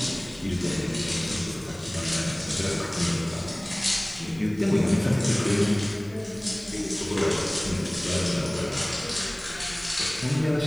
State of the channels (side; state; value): left; noise; hiss, 26 dB below the sound